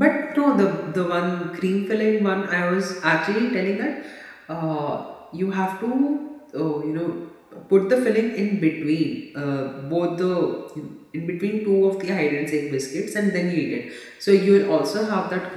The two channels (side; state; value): both; identical; correlation 1.00